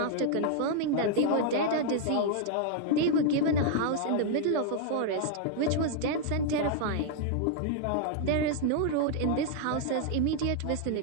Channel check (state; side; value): different; both; correlation -0.01